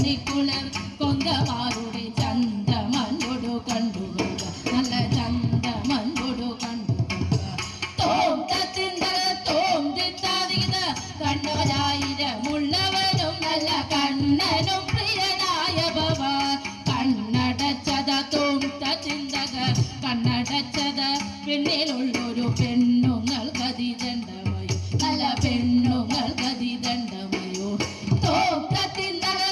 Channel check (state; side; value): identical; both; correlation 1.00